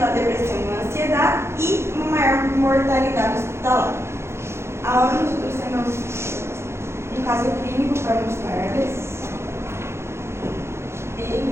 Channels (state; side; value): late; left; 0.13 ms